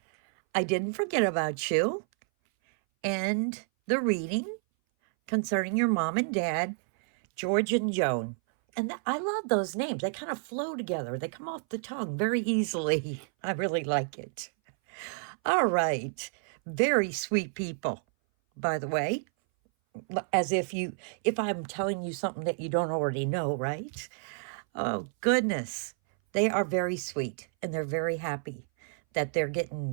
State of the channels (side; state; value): left; silent; 58 dB below the other